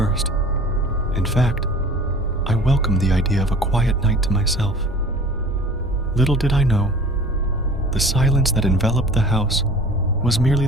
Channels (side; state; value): both; normal; correlation 0.44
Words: In fact, I welcomed the idea of a quiet night to myself. Little did I know, the silence that enveloped the house was merely